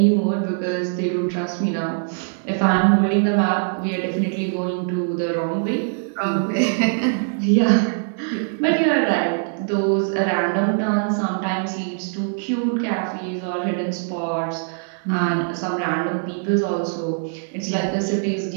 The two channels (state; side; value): silent; left; digital silence